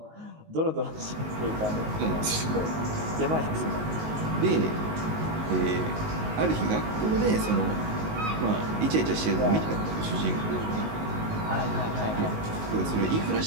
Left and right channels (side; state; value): left; late; 19 ms